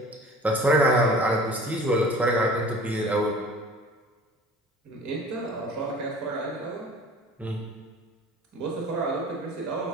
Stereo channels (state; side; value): normal; both; correlation 0.45